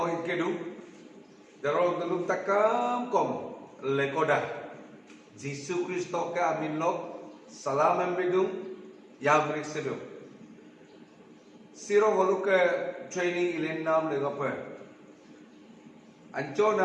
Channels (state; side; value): identical; both; correlation 1.00